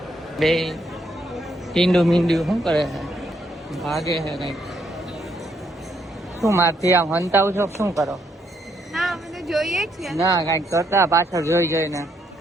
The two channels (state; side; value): normal; both; correlation 0.74